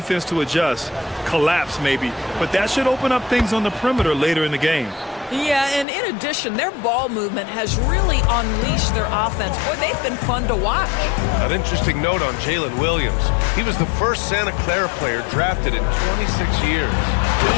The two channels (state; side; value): drops out; right; at 5.9 s